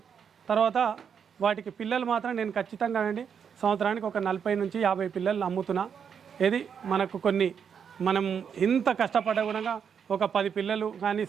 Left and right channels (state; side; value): quieter; left; 7.3 dB